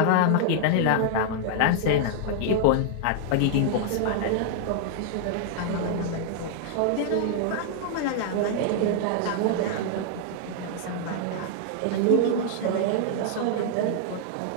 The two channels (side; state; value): both; different; correlation -0.01